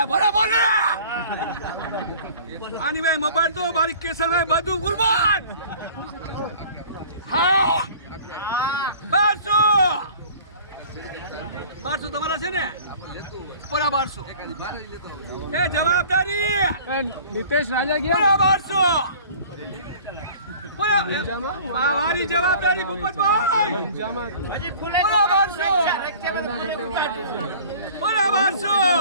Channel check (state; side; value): inverted; both; correlation -0.47